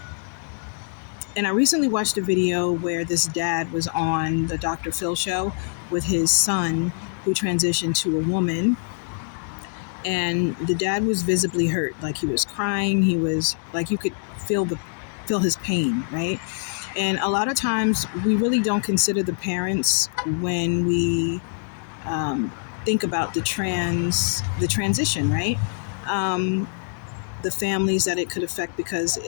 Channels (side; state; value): right; silent; 62 dB below the other